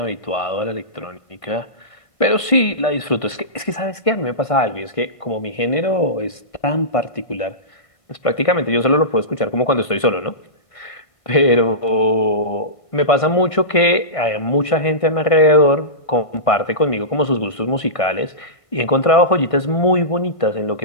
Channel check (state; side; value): late; right; 1.5 ms